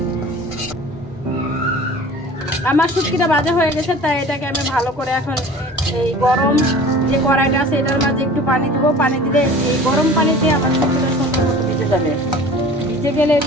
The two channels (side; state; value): both; normal; correlation 0.42